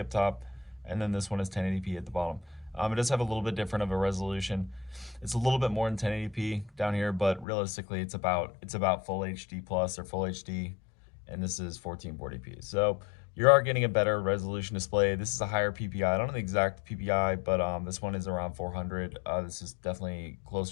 top, and then this one is 1080p at the bottom. It does have a little bit different of a resolution. It's a little bit more than 1080p down here, but realistically, it's about full HD plus or full HD, and this is 1440p. So you are getting a better resolution display. This is a higher PPI. I don't know the exact PPI, but this one is around 400. This is definitely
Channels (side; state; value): right; drops out; at 7.5 s